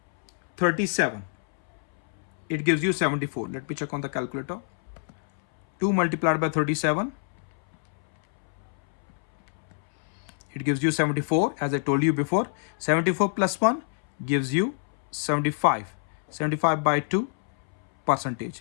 37, it gives you 74. Let me check on the calculator. 2 multiplied by 37, it gives you 74. As I told you before, 74 plus 1 gives you 75. 75 by 2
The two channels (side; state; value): right; silent; 61 dB below the other